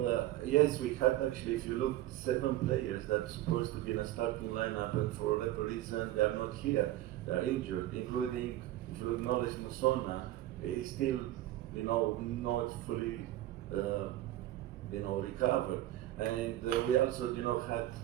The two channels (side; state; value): left; quieter; 14.7 dB